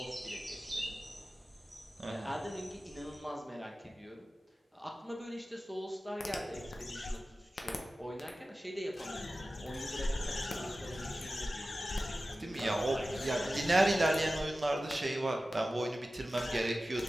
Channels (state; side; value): normal; both; correlation 0.95